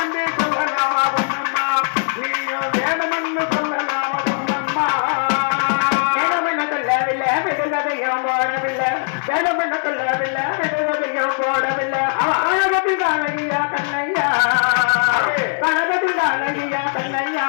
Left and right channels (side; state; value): right; silent; 63 dB below the other